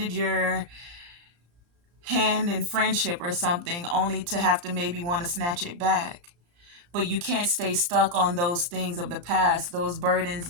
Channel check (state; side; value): late; left; 34 ms